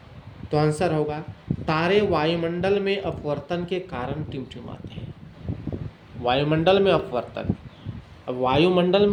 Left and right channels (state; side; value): identical; both; correlation 1.00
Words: तो आंसर होगा तारे वायुमंडल में अपवर्तन के कारण टिमटिमाते हैं। वायुमंडल में अपवर्तन। अब वायुमंडल